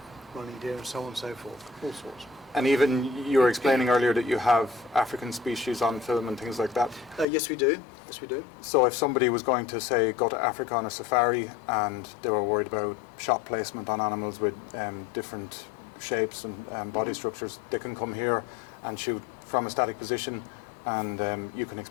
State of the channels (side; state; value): right; drops out; at 7.2 s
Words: running deer, and so on and so forth. All sorts. And even you were explaining earlier that you have African species on film and things like that. Yes, we do. Yes, we do. So if somebody was going to, say, go to Africa on a safari and they were worried about shot placement on animals with different shapes and body structures, they can come here and shoot from a static position, and you can